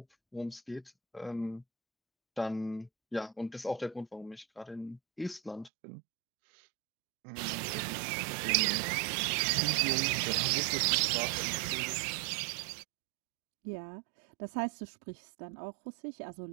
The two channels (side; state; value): left; drops out; at 5.7 s